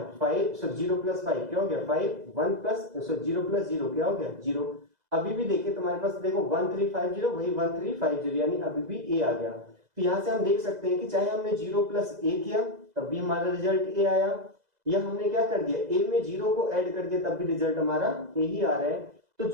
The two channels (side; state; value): left; late; 2.0 ms